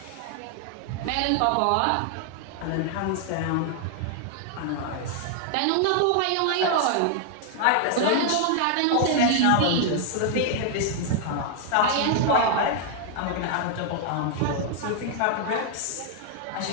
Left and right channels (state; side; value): different; both; correlation 0.00